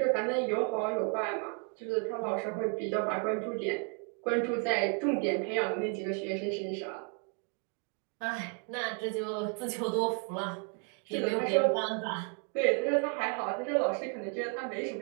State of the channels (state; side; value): quieter; left; 39.0 dB